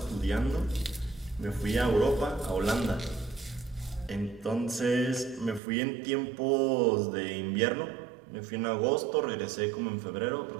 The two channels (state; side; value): drops out; left; at 5.6 s